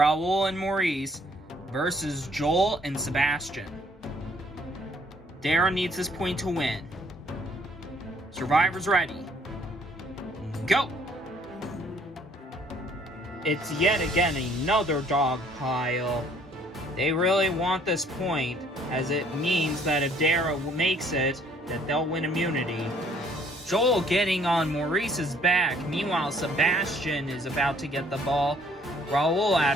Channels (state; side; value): normal; both; correlation 0.61